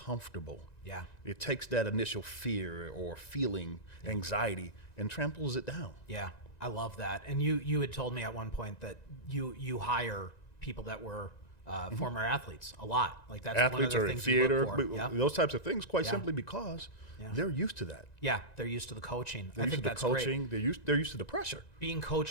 Yeah. It takes that initial fear or feeling, anxiety, and tramples it down. Yeah. I love that. And you had told me at one point that you hire people that were former athletes a lot. Like that's athletes one of or the things theater, you look for. those types of things, quite simply because they're used to that. Yeah, they're used to the coaching. They're I used think to the that's coaching. great. They're used to the pressure. Being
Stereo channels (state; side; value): late; right; 1.9 ms